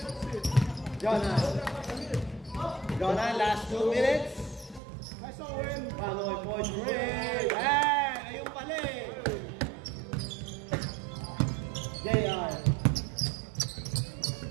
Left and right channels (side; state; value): left; drops out; at 4.8 s